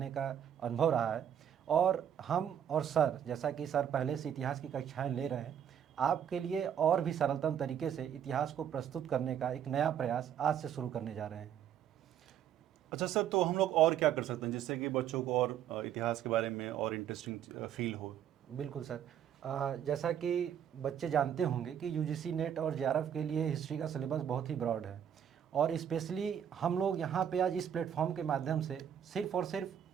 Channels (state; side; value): quieter; left; 9.3 dB